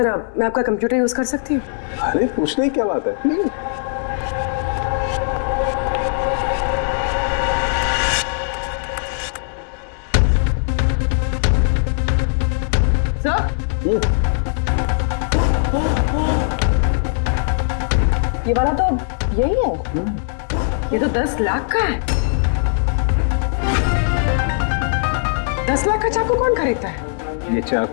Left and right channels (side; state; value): right; silent; digital silence